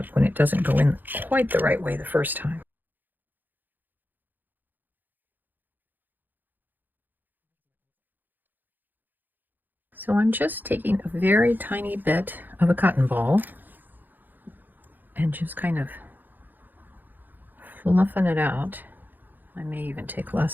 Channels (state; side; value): late; left; 0.088 ms